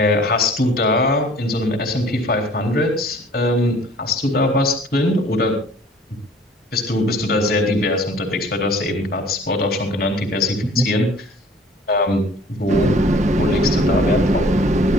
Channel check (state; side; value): normal; both; correlation 0.52